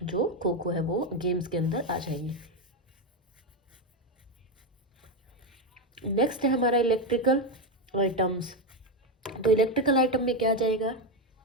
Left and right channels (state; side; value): normal; both; correlation 0.09